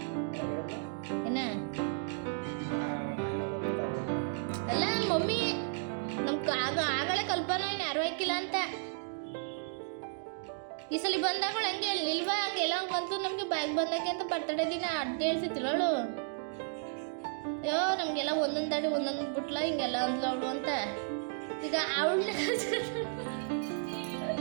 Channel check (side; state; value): left; silent; digital silence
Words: ಏನ ಅಲ್ಲ ಮಮ್ಮಿ ನಮ್ಗೆ ಆಗಲೇ ಕಲ್ಪನಾ ಏನು ಯಾರು ಹಾಕಿಲ್ಲ ಅಂತ. ಈ ಸಲ ಬಂದಾಗಳು ಹಂಗೆ ನಿಲ್ವಾ ಹಂಗೆಲ್ಲ ಬಂತು ನಮ್ಗೆ ಬ್ಯಾಗ್ ಬಂದಕ್ಕೆ ಅಂತ ಬರ್ತಡೇ ದಿನ ಅಡ್ಡ ಹೇಳ್ಸಿತ್ತಿಲ್ಲವಳು. ಅಯ್ಯೋ ನಮ್ಗೆಲ್ಲ ಒಂದೊಂದು ದಾಡಿ ಒಂದೊಂದು ಬಿಟ್ಲ ಹಿಂಗೆಲ್ಲ ಅಂದ್ಲು ಅವಳು ಅಂತ. ಈಗ ಅವಳನ್ನ